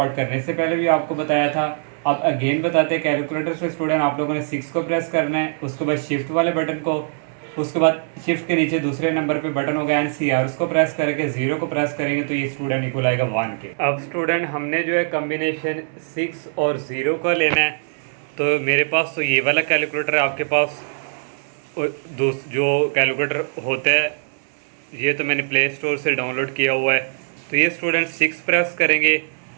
करने से पहले भी आपको बताया था। अब अगेन बताते हैं कैलकुलेटर से स्टूडेंट आप लोगों ने 6 को प्रेस करना है, उसके बाद शिफ्ट वाले बटन को, उसके बाद शिफ्ट के नीचे दूसरे नंबर पे बटन होगा NCR उसको प्रेस करके 0 को प्रेस करेंगे तो ये स्टूडेंट इक्वल आएगा 1 के। अब स्टूडेंट हमने जो है कॉम्बिनेशन 6 और 0 का लेना है, तो मेरे पास तो ये वाला कैलकुलेटर है, आपके पास जो कैलकुलेटर होता है ये तो मैंने प्ले स्टोर से डाउनलोड किया हुआ है। तो ये स्टूडेंट 6 प्रेस करेंगे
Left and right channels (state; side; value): silent; left; 61 dB below the other